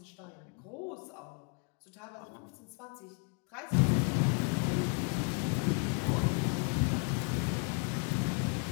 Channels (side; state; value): right; quieter; 35.2 dB